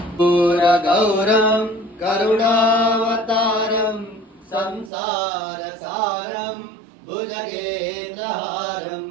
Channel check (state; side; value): drops out; left; at 4.9 s